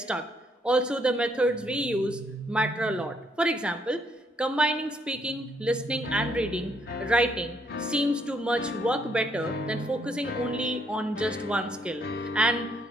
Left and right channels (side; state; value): both; normal; correlation 0.71